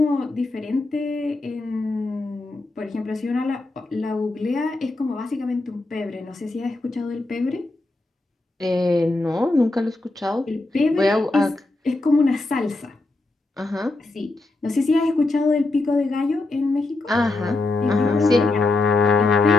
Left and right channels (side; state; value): right; quieter; 3.1 dB